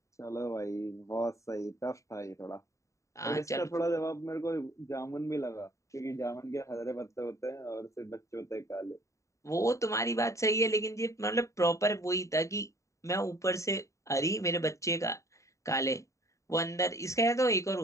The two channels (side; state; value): right; late; 0.15 ms